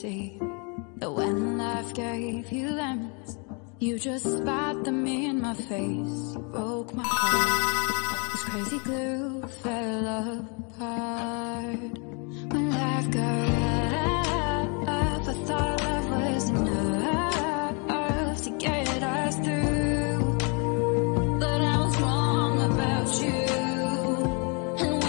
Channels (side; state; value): right; quieter; 34.7 dB